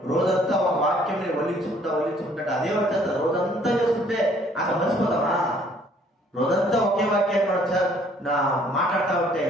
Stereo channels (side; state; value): both; normal; correlation 0.60